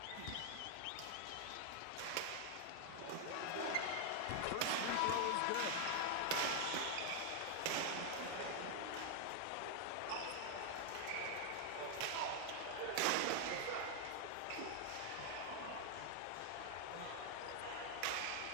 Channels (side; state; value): both; different; correlation 0.00